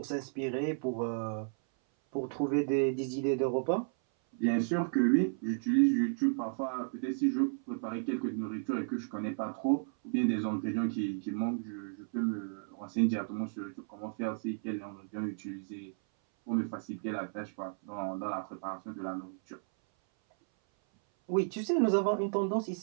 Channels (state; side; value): silent; left; 55 dB below the other